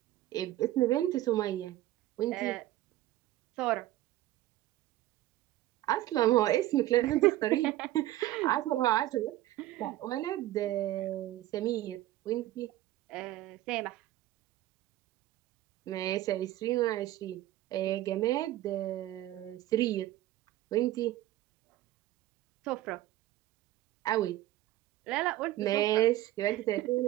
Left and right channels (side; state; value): left; quieter; 15.4 dB